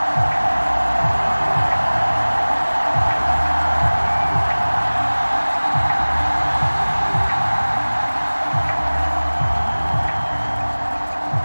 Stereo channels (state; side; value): inverted; both; correlation -1.00